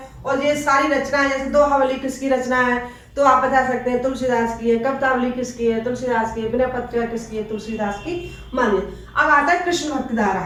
और ये सारी रचनाएं जैसे दोहावली किसकी रचना है तो आप बता सकते हैं तुलसीदास की है। कवितावली किसकी है? तुलसीदास की है। विनय पत्रिका किसकी है? तुलसीदास की मानिए। अब आता है कृष्ण भक्ति धारा।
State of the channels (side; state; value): both; identical; correlation 1.00